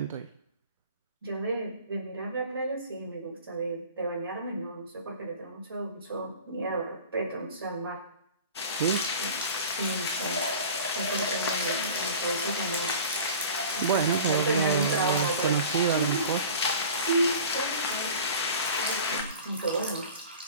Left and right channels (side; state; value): both; inverted; correlation -0.40